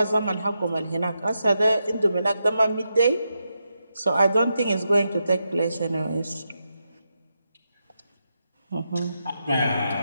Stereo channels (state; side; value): inverted; both; correlation -0.85